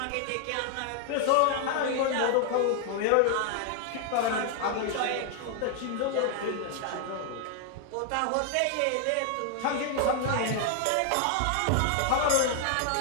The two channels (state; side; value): different; both; correlation 0.00